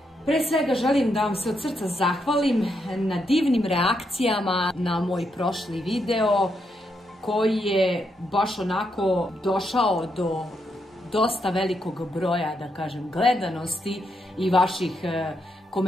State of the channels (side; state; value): both; normal; correlation 0.80